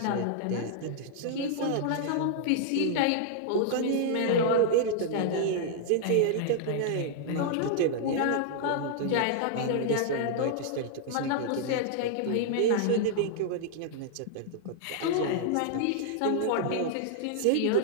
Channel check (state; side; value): different; both; correlation -0.01